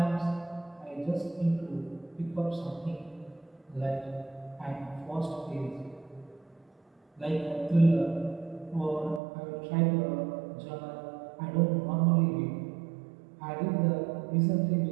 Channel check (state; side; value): drops out; left; at 9.2 s